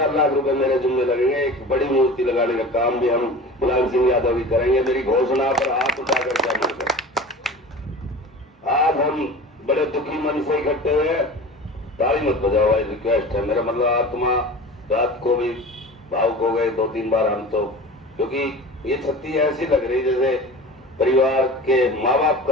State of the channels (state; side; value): normal; both; correlation 0.36